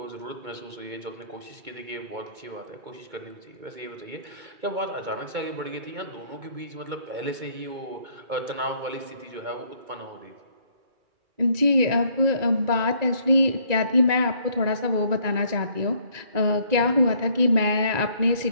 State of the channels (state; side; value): late; left; 2.3 ms